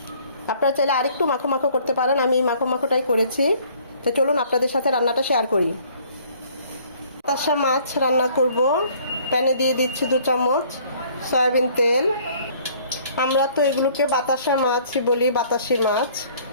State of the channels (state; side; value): inverted; both; correlation -0.57